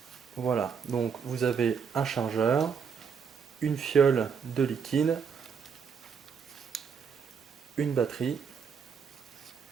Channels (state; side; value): quieter; left; 6.5 dB